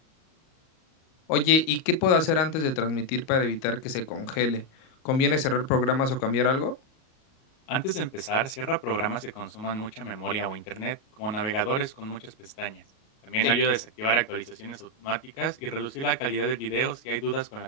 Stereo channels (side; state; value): right; late; 38 ms